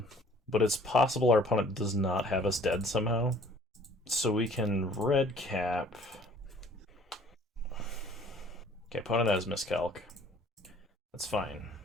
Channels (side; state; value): both; normal; correlation 0.54